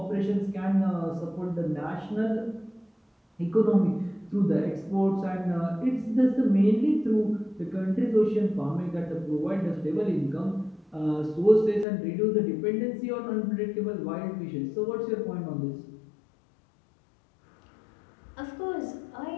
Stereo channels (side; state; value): right; drops out; at 11.9 s